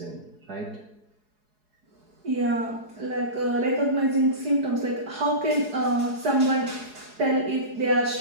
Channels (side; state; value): left; late; 4.8 ms